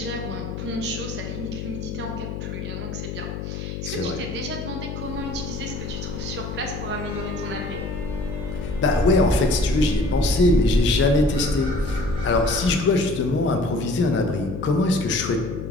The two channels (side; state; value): left; noise; hum, 6 dB below the sound